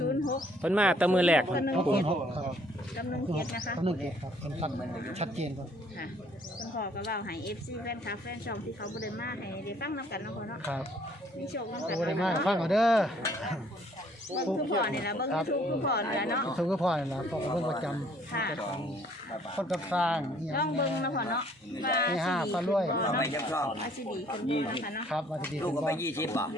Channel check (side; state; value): both; normal; correlation 0.61